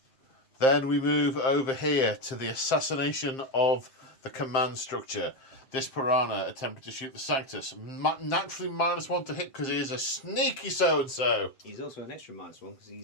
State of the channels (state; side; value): late; right; 7.6 ms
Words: Then we move over here to the assassination of the command structure. This piranha attempted to shoot the Sanctus. Naturally -1 to hit because he is a sneaky so-and-so. He's also an extra -1 because